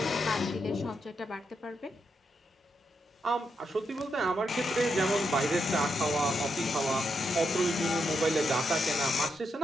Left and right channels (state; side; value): normal; both; correlation 0.82